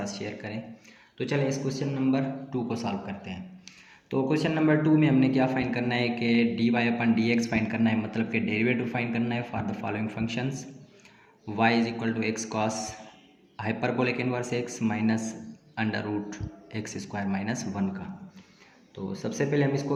शेयर करें। तो चलें इस क्वेश्चन नंबर 2 को सॉल्व करते हैं। तो क्वेश्चन नंबर 2 में हमने क्या फाइंड करना है कि D Y upon D X find करना है, मतलब कि डेरिवेटिव फाइंड करना है for the following functions. Y is equal to X cos hyperbolic inverse X minus under root X square minus 1 का। तो सबसे पहले हम इसको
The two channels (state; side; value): identical; both; correlation 1.00